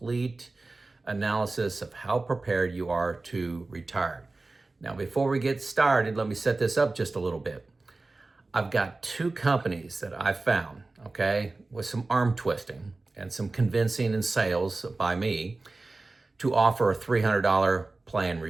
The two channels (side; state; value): left; quieter; 3.3 dB